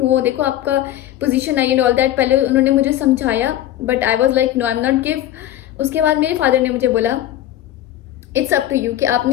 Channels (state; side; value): quieter; right; 12.9 dB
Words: देखो आपका पोजीशन आई एंड ऑल दैट, पहले उन्होंने मुझे समझाया, but I was like no, I am not give. उसके बाद मेरे फादर ने मुझे बोला इट्स अप टू यू कि